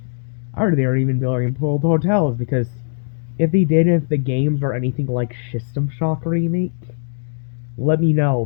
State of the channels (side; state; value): right; silent; digital silence